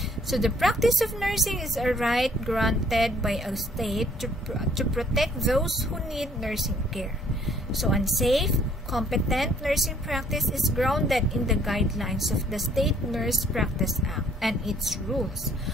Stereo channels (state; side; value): normal; both; correlation 0.61